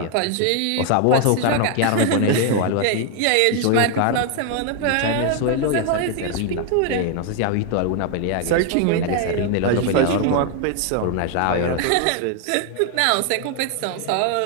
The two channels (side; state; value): both; different; correlation 0.00